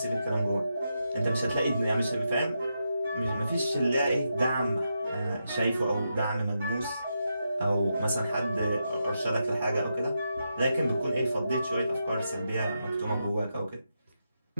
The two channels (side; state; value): both; inverted; correlation -0.85